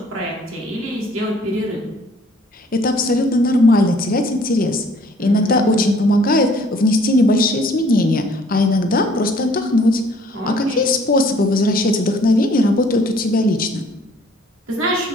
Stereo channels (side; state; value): both; normal; correlation 0.57